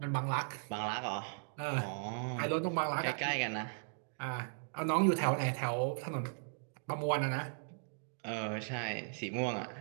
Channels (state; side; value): silent; left; digital silence